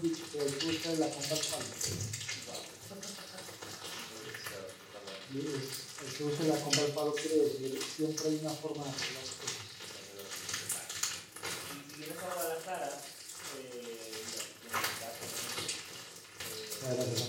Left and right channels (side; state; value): both; identical; correlation 1.00